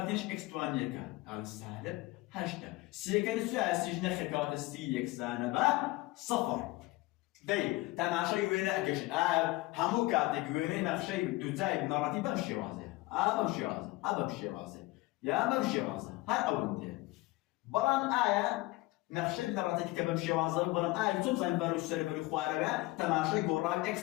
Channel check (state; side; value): quieter; right; 20.5 dB